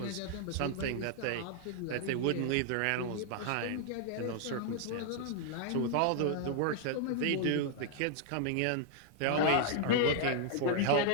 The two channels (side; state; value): both; different; correlation 0.00